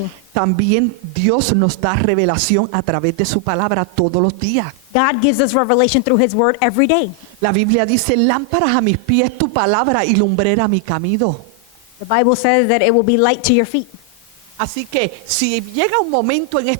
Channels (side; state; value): both; normal; correlation 0.00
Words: También Dios nos da revelación a través de su palabra todos los días. God gives us revelation through His Word every day. La Biblia dice, lámparas a mis pies tu palabra y lumbrera a mi camino. The Bible says that it will be light to your feet. Así que si llega un momento en